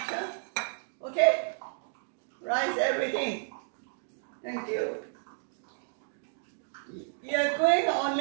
huh? Okay? Rice everything. Thank you. You're going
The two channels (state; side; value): silent; left; digital silence